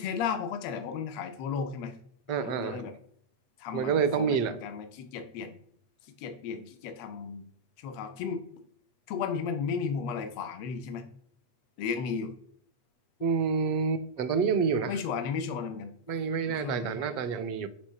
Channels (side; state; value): right; late; 8.3 ms